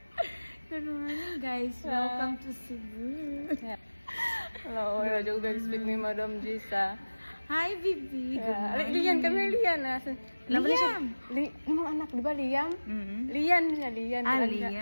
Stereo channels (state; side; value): inverted; both; correlation -1.00